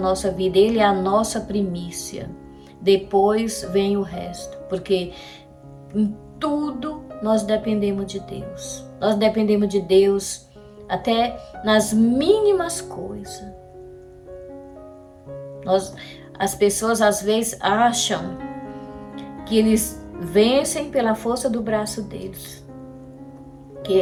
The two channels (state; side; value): identical; both; correlation 1.00